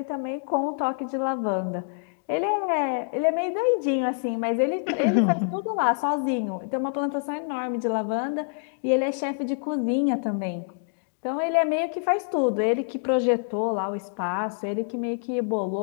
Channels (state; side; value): silent; right; digital silence